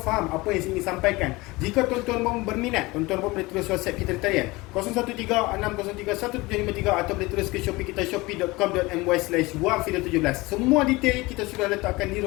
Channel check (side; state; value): right; quieter; 22.1 dB